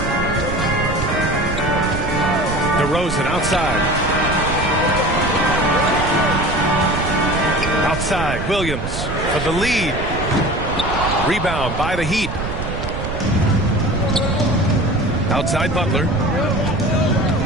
DeRozan outside. outside. Williams for the lead. Rebound by the Heat. Outside Butler.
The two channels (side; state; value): right; noise; rumble, 5 dB below the sound